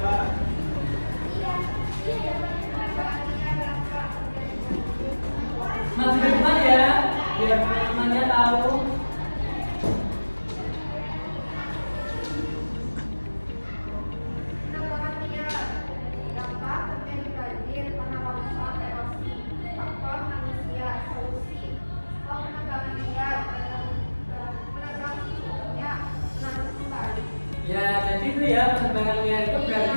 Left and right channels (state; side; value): inverted; both; correlation -1.00